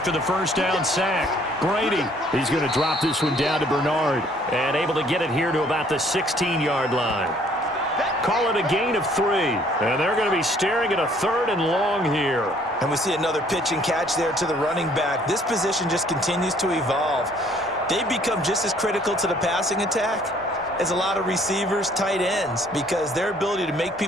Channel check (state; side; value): normal; both; correlation 0.60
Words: the first down sack. Brady, he's going to drop this one down to Bernard. And able to get it here to about the 16-yard line. Call it a gain of 3. And they're going to be staring at a 3rd and long here. And we see another pitch and catch there to the running back. This position just continues to evolve. They become just as critical to the passing attack as a lot of receivers, tight ends, because their ability to make